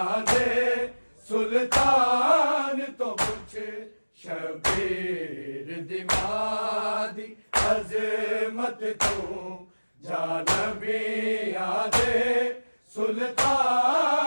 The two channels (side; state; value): both; inverted; correlation -1.00